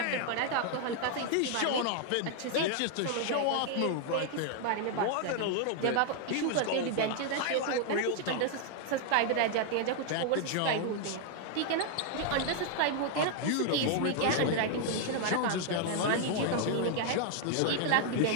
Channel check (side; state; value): both; different; correlation 0.00